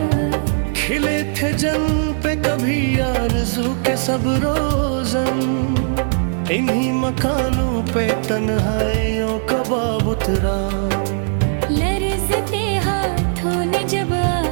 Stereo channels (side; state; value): left; silent; digital silence